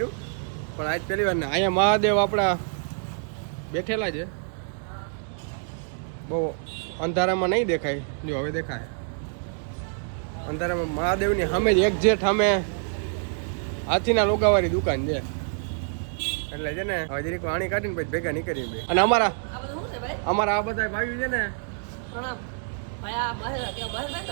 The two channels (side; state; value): left; silent; digital silence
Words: પણ આજ પહેલી વાર. ને અહીંયા મહાદેવ આપણા બેઠેલા છે. બહુ અંધારામાં નહીં દેખાય, જો હવે દેખાય. અંધારામાં મહાદેવની સામે જ એક્ઝેક્ટ સામે હાથીના લોગાવાળી દુકાન છે. એટલે છે ને હવે જરીક વાણી કાઢીને પછી ભેગા નીકળીએ. અને અમારા આ બધા ભાઈઓ છે ને